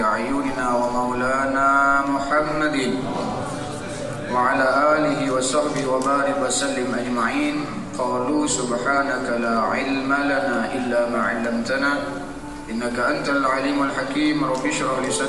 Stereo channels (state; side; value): identical; both; correlation 1.00